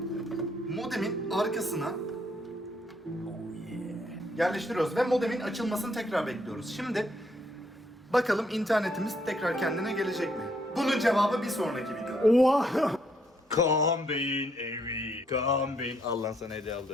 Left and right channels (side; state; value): both; normal; correlation 0.71